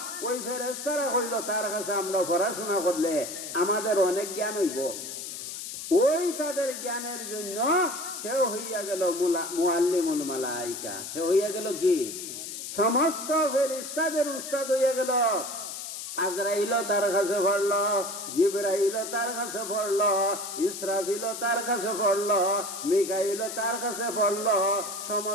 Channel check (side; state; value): left; noise; hiss, 8 dB below the sound